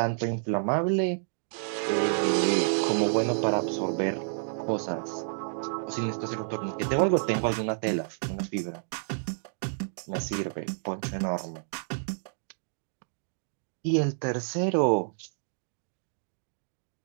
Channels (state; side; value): silent; left; digital silence